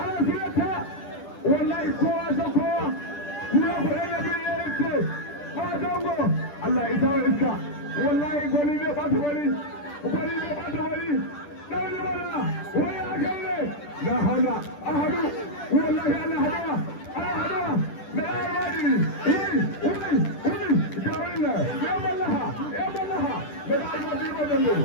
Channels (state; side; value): late; right; 10 ms